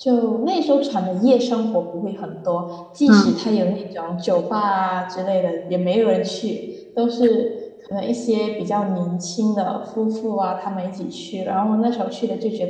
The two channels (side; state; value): both; identical; correlation 1.00